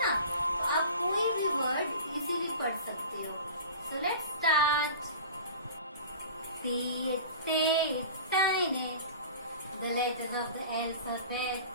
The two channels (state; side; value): inverted; both; correlation -0.37